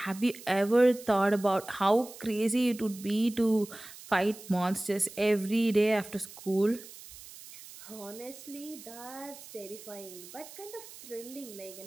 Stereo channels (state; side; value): noise; right; hiss, 16 dB below the sound